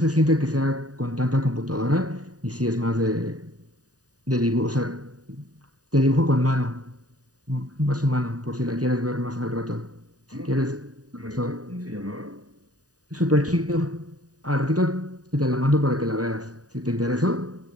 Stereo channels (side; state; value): left; late; 0.68 ms